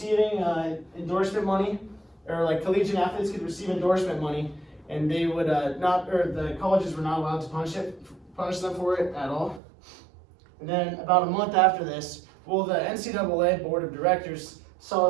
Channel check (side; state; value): left; drops out; at 9.6 s